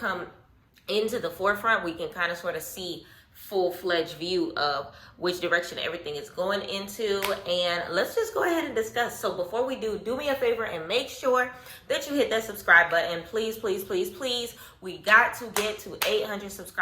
into the forefront, we can kind of sort of see full-fledged view of which direction everything is going into. And let's just go ahead and discuss. So before we do me a favor and make sure that you hit that subscribe button. Please, please, please, please. We got to get to 800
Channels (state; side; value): identical; both; correlation 1.00